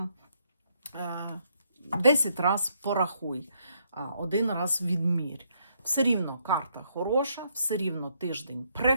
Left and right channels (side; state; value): both; inverted; correlation -0.73